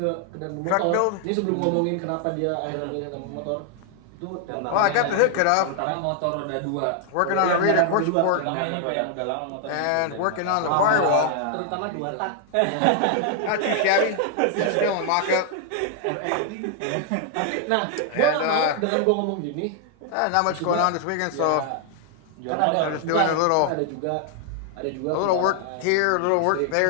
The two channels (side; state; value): both; different; correlation 0.00